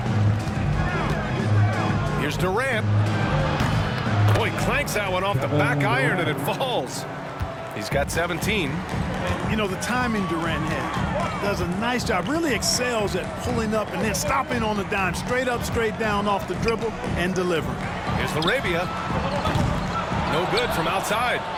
Here's Durant. Boy, clanks that one off the back iron and it falls. He's got 17. You know, the timing Durant has does a nice job, really excels at pulling up and then stopping on the dime, straight up, straight down off the dribble and delivering. Here's Larabia. No good from outside.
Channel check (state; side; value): identical; both; correlation 1.00